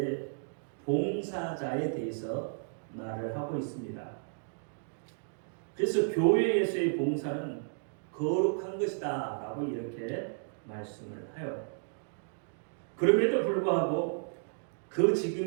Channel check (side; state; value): left; silent; digital silence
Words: 봉사자에 대해서 말을 하고 있습니다. 그래서 교회에서의 봉사는 거룩한 것이다 라고 이렇게 말씀을 하여 그럼에도 불구하고 그